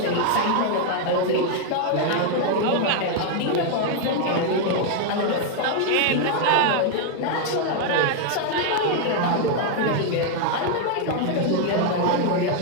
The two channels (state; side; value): different; both; correlation 0.00